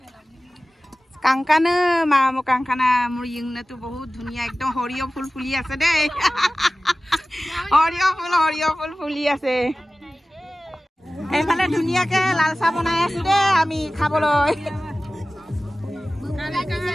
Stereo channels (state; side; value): normal; both; correlation 0.96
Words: কাংকানা মোৰ ইংনাটো বহুত ধুনীয়া একদম হৰিয় ফুল ফুলি আছে দেই হৰিয় ফুল ফুলি আছে এইফালে ধুনীয়াকে লাল চাহ বনাই আছো দেই আমি খাবলৈ